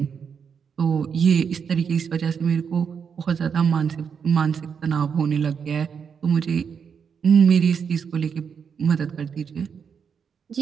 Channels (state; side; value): quieter; left; 6.7 dB